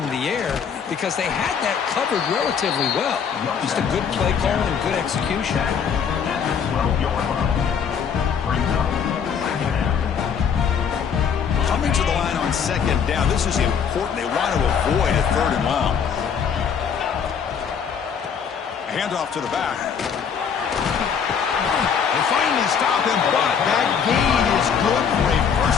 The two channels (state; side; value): quieter; right; 7.1 dB